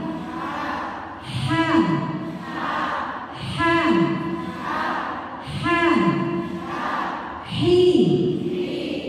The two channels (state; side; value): identical; both; correlation 1.00